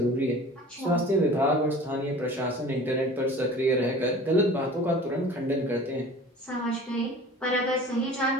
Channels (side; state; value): both; normal; correlation 0.42